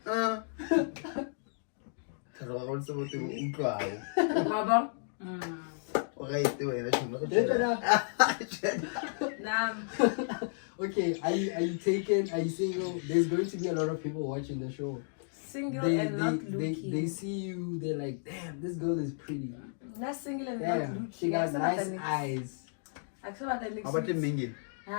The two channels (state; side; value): silent; right; digital silence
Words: Okay, are you taken? Are you single? There's going to be a lot of people watching the show. Single and not looking. They see you, they're like, damn, this girl is pretty. Not single and not looking. She got nice eyes. How about the minging?